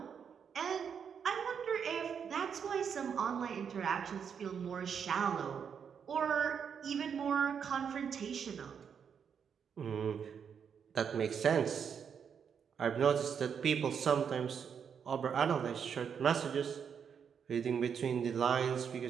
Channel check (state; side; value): quieter; left; 7.2 dB